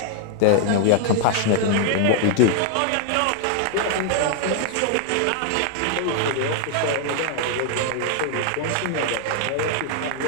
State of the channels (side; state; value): both; different; correlation 0.00